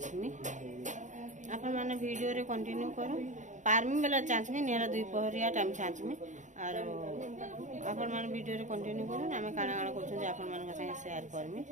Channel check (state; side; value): late; left; 0.36 ms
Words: अपन माने वीडियो रे कंटिन्यू करू पारमी बेला चाचमी नेला 2 पहरिया टाइम चाचमी और अपन माने वीडियो रे कंटिन्यू करू आमे काना काना करछु जे अपन माने संगे शेयर करमी